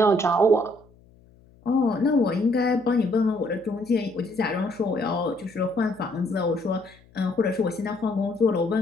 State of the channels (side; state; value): left; noise; hum, 28 dB below the sound